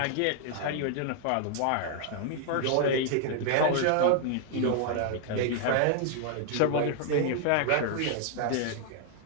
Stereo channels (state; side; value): different; both; correlation 0.00